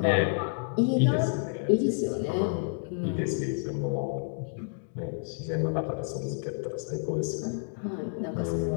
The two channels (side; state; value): right; silent; digital silence